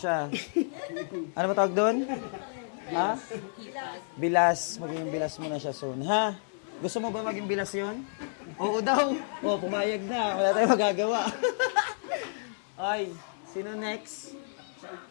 Ano ba tawag doon? Ha? Bilas. Magiging bilas mo na siya soon. Ha? Gusto mo ba maging bilas yon? Oo daw. Oo, pumayag na. Wala tayong magagawa. Ay, sino next?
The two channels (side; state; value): right; silent; digital silence